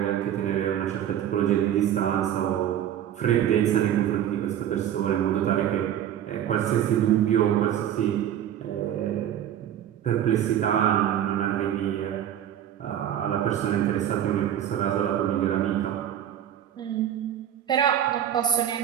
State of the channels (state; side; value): quieter; left; 10.6 dB